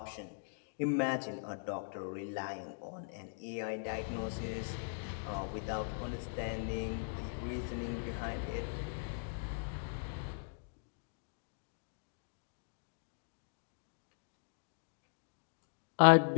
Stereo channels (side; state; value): right; silent; digital silence